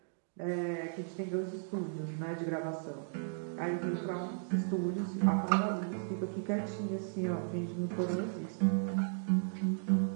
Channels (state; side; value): silent; left; digital silence